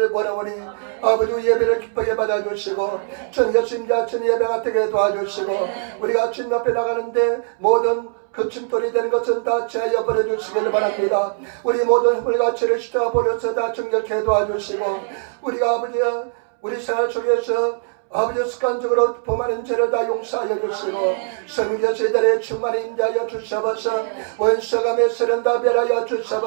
원하오니 아버지 예배를 기쁘게 받아주시고 주님 예수님자 주님 예배가 되게 도와주시고 우리가 주님 앞에 나가는데 모든 급침돌이 되는 것은 다 제하여 버려주시기를 바랍니다. 우리 모든 허물 가치를 십자가 버려서 다 정결케 도와주시고 우리가 아버지여 우리 생활 속에서 아버지 습관적으로 범하는 죄를 다 용서하여 주시고 성령께서 이달에 충만히 임재하여 주셔서 원수감의 세는 다 멸하여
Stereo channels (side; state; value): left; silent; 65 dB below the other